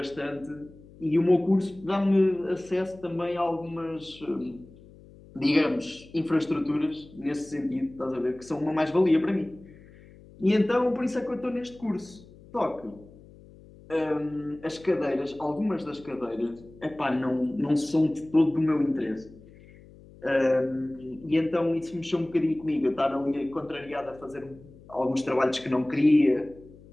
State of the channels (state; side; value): noise; left; hum, 22 dB below the sound